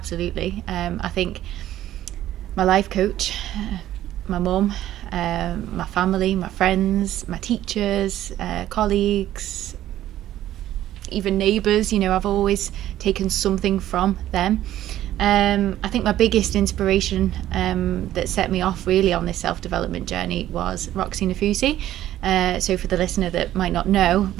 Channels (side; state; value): left; quieter; 13.1 dB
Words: I think my life coach, my mum, my family, my friends, my teachers, colleagues, even neighbours, I've always taken something from them. I think my biggest inspiration that set me off really on this self-development journey was Roxy Nafusi. So for the listener that might not know,